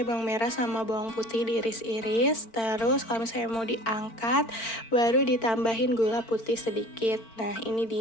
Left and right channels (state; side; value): late; right; 4.4 ms